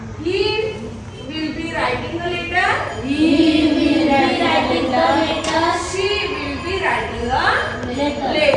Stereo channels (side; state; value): both; identical; correlation 1.00